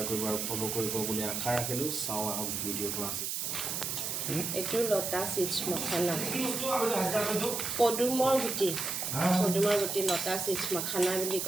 কৰিব আৰু ফ'ল' কৰিব বুলি আশা ৰাখিলোঁ চাওঁ আহক ভিডিঅ'টো আজি এইটো লতা চিপছ মখানা পদুমৰ গুটি লতা চিপছ মখানা বুলি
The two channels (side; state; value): right; noise; hiss, 2 dB below the sound